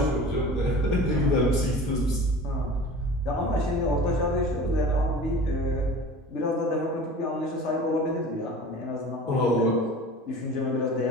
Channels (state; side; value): normal; both; correlation 0.39